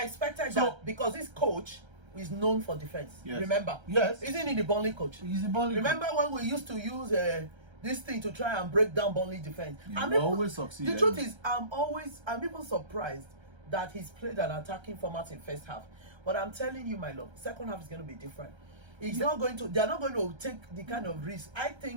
expected that because this coach is known for defense. Remember? Yes. Isn't he the Burnley coach? He's the Burnley Remember coach. when we used to use this thing to try and break down Burnley defense? He always succeed. The truth is, I'm even surprised that he's played an attacking format in first half. But I'm telling you, my love, second half is going to be different. They're not going to take the kind of risk. I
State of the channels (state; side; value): late; left; 1.3 ms